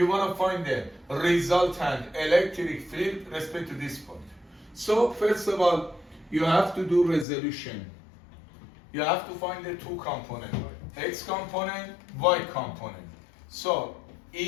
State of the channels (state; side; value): drops out; right; at 7.2 s